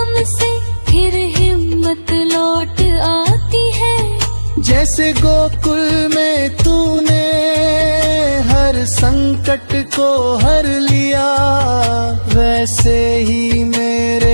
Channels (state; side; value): inverted; both; correlation -1.00